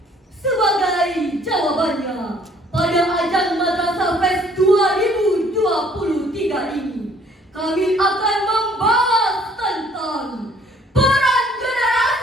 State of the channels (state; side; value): normal; both; correlation 0.59